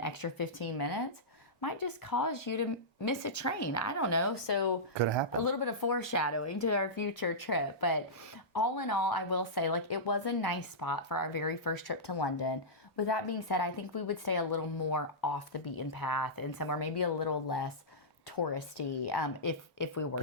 extra 15 minutes might just cause you to miss a train. I don't know. So could happen. A little bit of foreshadowing to our future trip. But all in all, I will say it was a nice spot for our very first trip to London. With that being said, I think we would stay a little more off the beaten path and somewhere maybe a little less touristy if we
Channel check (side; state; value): both; normal; correlation -0.15